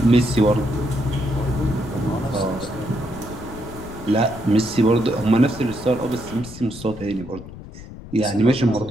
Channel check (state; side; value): noise; left; rumble, 14 dB below the sound